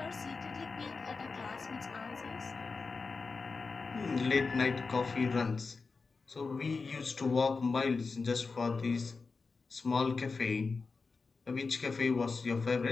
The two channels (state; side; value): quieter; right; 4.4 dB